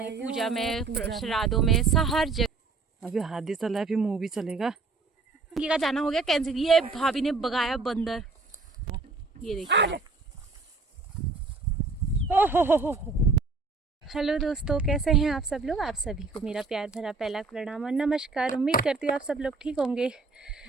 पूजा में, श्राद्धों में, हर जगह। अभी हाथी चला है, फिर मूवी चलेगा। का जाना हो गया कैंसिल। ये भाभी ने भगाया बंदर, ये देखिए। हेलो दोस्तों, कैसे हैं आप सब लोग। आप सभी को मेरा प्यार भरा पहला प्रणाम और नमस्कार। उम्मीद करती हूँ आप सब लोग ठीक होंगे।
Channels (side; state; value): left; quieter; 3.9 dB